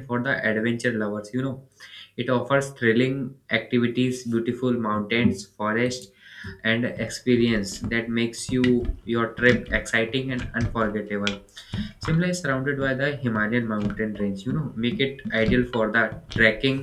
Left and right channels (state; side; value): identical; both; correlation 1.00